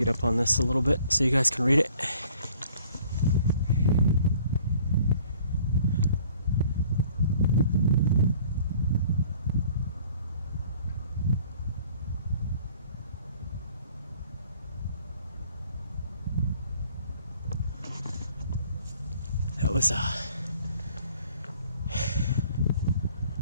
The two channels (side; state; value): both; inverted; correlation -0.56